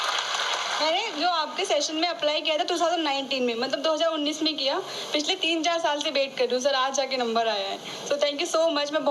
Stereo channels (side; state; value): both; identical; correlation 1.00